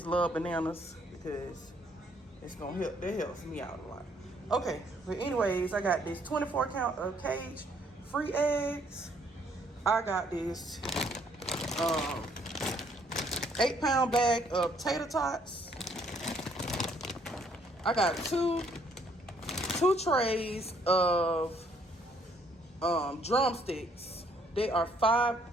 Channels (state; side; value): normal; both; correlation 0.66